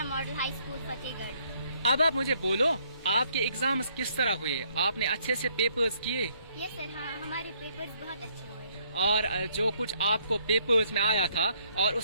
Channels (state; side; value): inverted; both; correlation -0.68